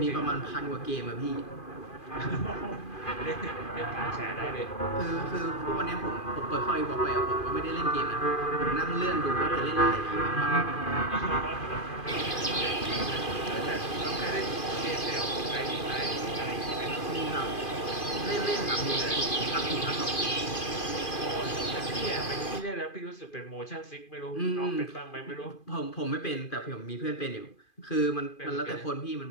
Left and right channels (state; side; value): late; right; 2.4 ms